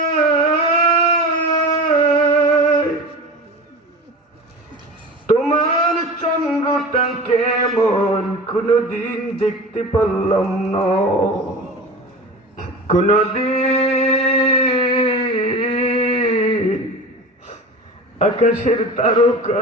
তোমার চন্দ্রটা কেমন কোনদিন দেখতে পারলাম না কোনদিন আকাশের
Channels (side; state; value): both; normal; correlation 0.32